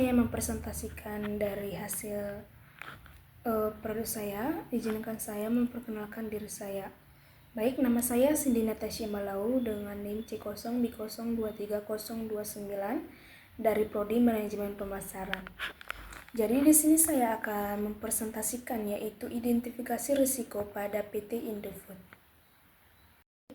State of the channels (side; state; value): both; identical; correlation 1.00